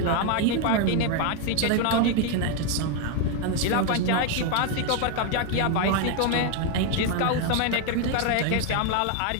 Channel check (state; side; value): different; both; correlation 0.01